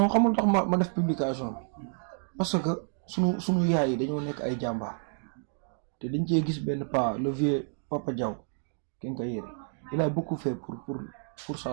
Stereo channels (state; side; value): silent; left; 58 dB below the other